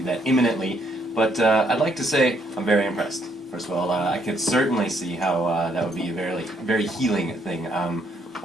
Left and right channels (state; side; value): normal; both; correlation 0.70